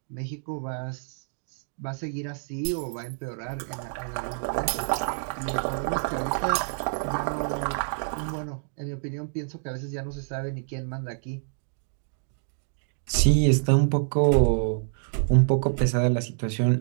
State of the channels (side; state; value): left; silent; digital silence